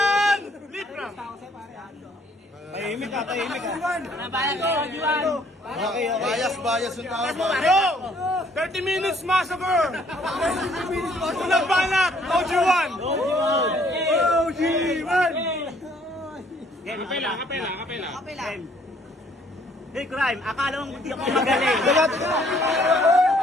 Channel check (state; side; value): normal; both; correlation 0.62